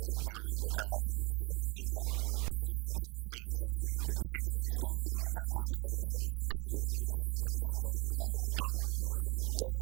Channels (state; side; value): quieter; left; 27.1 dB